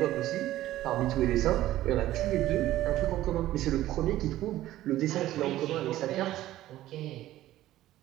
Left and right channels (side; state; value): left; quieter; 14.6 dB